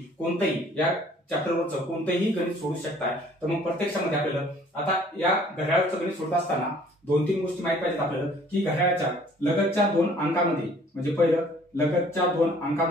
कोणतंही या चॅप्टरवरचं कोणतंही गणित सोडू शकताय. तर मग प्रत्यक्षामध्ये आपल्याला आता या घड्याळाचं गणित सोडत असताना 2-3 गोष्टी माहिती पाहिजेत आपल्याला, की घड्याळाच्या लगतच्या 2 अंकामध्ये, म्हणजे पहिलं लगतच्या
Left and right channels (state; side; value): normal; both; correlation 0.55